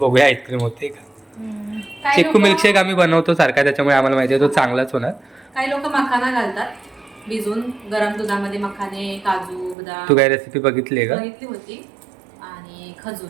आईस्क्रीम होते का. काही चिक्कू लोकं- मिल्कशेक आम्ही बनवतो सारखा, त्याच्यामुळे आम्हाला माहिती आहे तो चांगलाच होणार. काही लोक मखाना घालतात भिजवून गरम दुधामध्ये, मखाने, काजू, बदाम. तू काय रेसिपी बघितली आहे का? बघितली होती. आणि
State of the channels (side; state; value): left; drops out; at 9.8 s